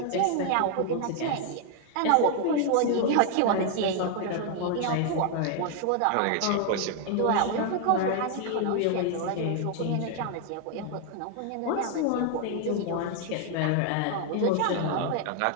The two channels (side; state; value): both; different; correlation 0.00